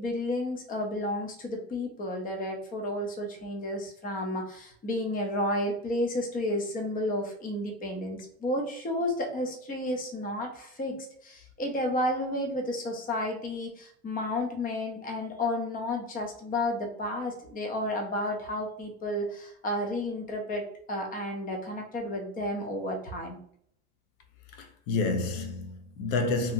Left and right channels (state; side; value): normal; both; correlation 0.20